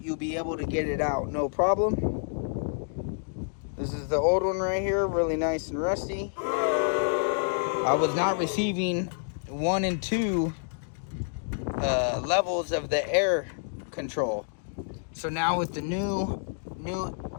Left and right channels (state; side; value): silent; right; digital silence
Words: you'll be able to get it out, no problem. This is the old one right here, really nice and rusty. I was not receiving 1 and 2 levels of the air control. So now with the new